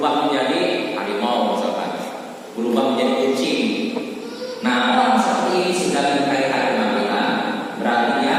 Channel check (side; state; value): both; identical; correlation 1.00